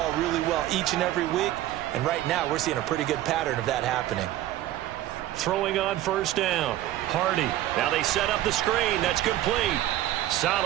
really well each and every week, and right now we're seeing a pretty good pattern of that happening. Throwing on first down. Hardy. Now they set up the screen. That's complete.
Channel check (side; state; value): left; quieter; 14.2 dB